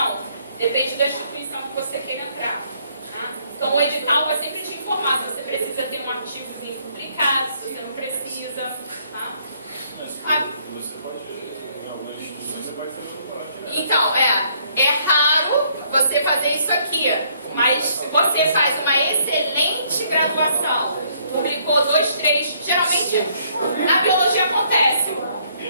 Depende da instituição que você queira entrar. Tá? Então, o edital vai sempre te informar se você precisa ter um artigozinho publicado, se você não precisa. Tá? Você pode, em algumas instituições, você pode fazer doutorado direto. Então, é raro você fazer isso aqui, mas você faz uma excelente graduação, publicou 2, 3, geralmente na biologia acontece.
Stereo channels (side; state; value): both; inverted; correlation -0.67